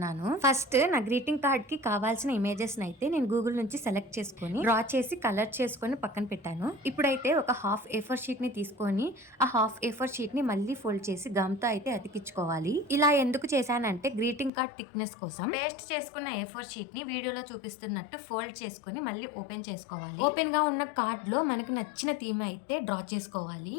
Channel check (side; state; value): right; drops out; at 14.5 s